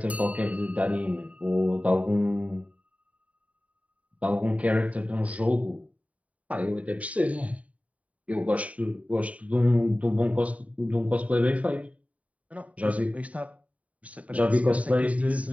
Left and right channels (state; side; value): late; left; 0.068 ms